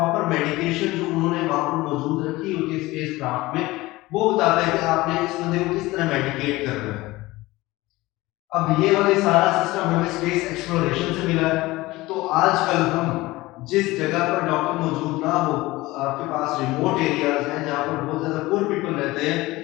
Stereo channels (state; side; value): quieter; right; 19.6 dB